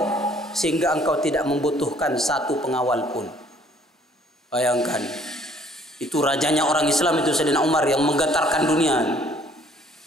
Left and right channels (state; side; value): normal; both; correlation 0.60